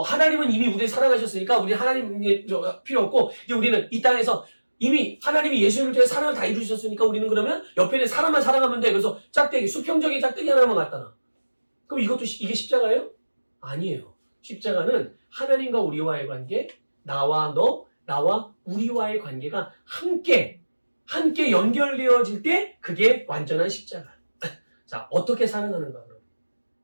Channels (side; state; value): both; inverted; correlation -1.00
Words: 이미 우리를 사랑하셨으니까, 우리 하나님이 필요 없고, 이제 우리는 이 땅에서 이미 하나님이 예수님을 통해 사랑을 다 이루셨으니까 우리는 그러면 옆에 있는 사람만 사랑하면 돼. 그래서 수평적인 짝대기 하나만 갖다 놔. 그럼 이게 십자가예요? 아니에요. 십자가는 하나님과 우리와의 관계, 나와 우리와의 관계가 함께 연결되어질 때 그게 완전한 십자가. 자, 어떻게 사랑하는가 그럼?